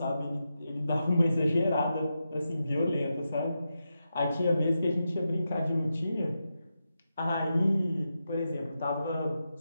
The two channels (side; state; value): both; inverted; correlation -0.88